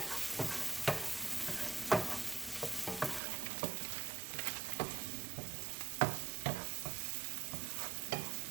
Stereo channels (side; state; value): left; drops out; at 3.2 s